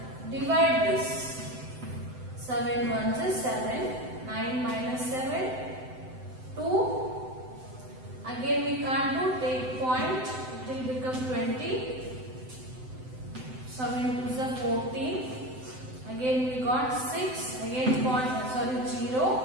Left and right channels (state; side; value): late; left; 7.8 ms